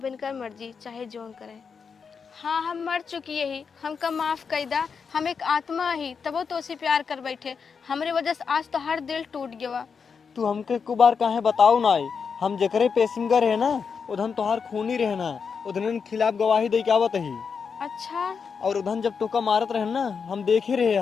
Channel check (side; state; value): right; quieter; 5.9 dB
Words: इनका मर्जी चाहे जोन करे। हाँ हम मर चुकी ही, हमका माफ कर दा, हम एक आत्मा ही, तब वो तो उसे प्यार कर बैठे। हमरे वजह से आज तो हर दिल टूट गया। तू हमके को बार काहे बताऊ ना, हम जकरे पेशिंगर है ना उधन तोहार खूनी रहना, उधन खिलाफ गवाही दे के आवत ही। अच्छा और उधन जब टोका मारत रहे ना हम देखे रहे